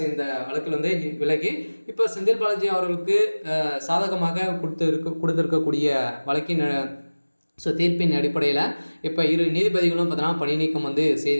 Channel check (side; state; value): both; inverted; correlation -1.00